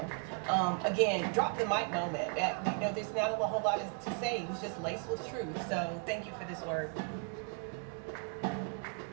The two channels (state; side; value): quieter; left; 39.2 dB